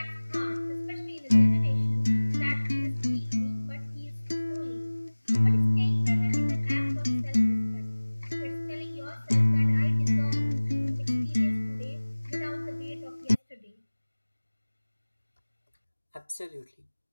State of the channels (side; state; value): both; inverted; correlation -1.00